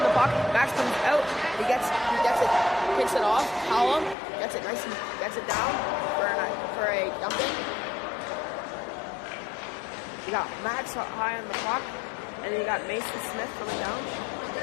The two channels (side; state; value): right; drops out; at 4.2 s